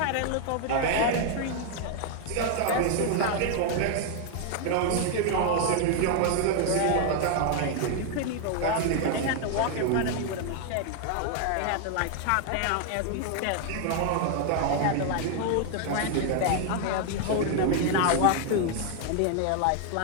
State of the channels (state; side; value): different; both; correlation 0.00